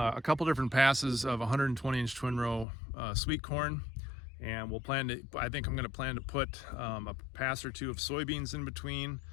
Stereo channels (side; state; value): right; drops out; at 2.7 s